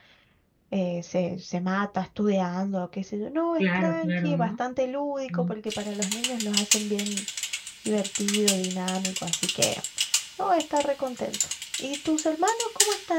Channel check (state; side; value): identical; both; correlation 1.00